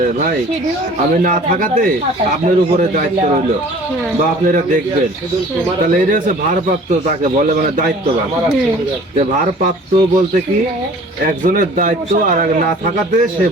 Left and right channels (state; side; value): normal; both; correlation 0.48